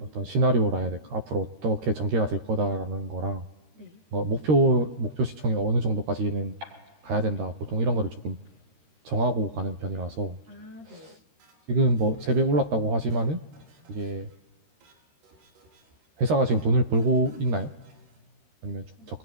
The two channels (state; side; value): late; left; 13 ms